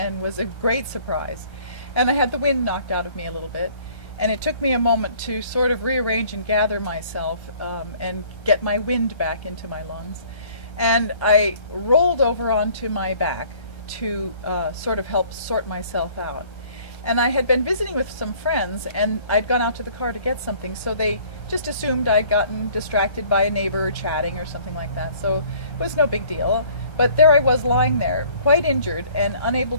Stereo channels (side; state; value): right; late; 1.3 ms